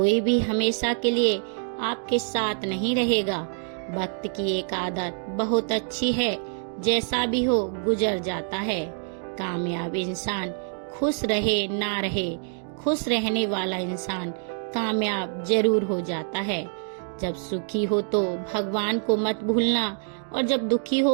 भी हमेशा के लिए आपके साथ नहीं रहेगा। वक्त की एक आदत बहुत अच्छी है, जैसा भी हो गुजर जाता है। कामयाब इंसान खुश रहे ना रहे, खुश रहने वाला इंसान कामयाब जरूर हो जाता है। जब सुखी हो तो भगवान को मत भूलना, और जब दुखी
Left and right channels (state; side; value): silent; left; 58 dB below the other